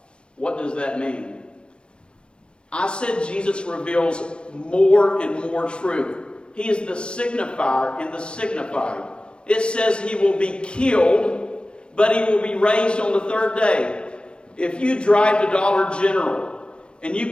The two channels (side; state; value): right; late; 0.054 ms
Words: What does that mean? I said Jesus reveals more and more truth. He is the signifier and the signified. It says he will be killed, but he will be raised on the third day. If you drive to Dollar General and